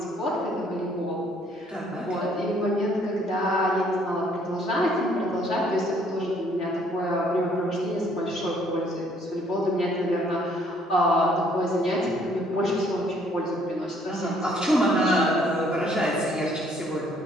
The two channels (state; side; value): normal; both; correlation 0.64